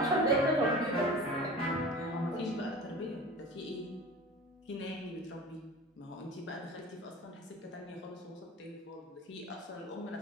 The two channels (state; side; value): normal; both; correlation 0.37